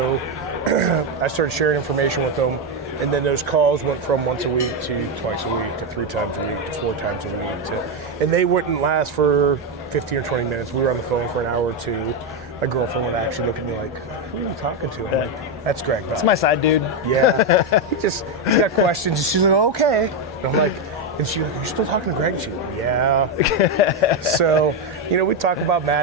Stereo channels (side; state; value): both; normal; correlation 0.06